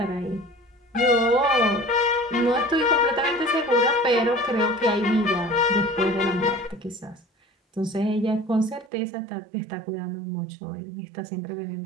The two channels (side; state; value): left; drops out; at 8.9 s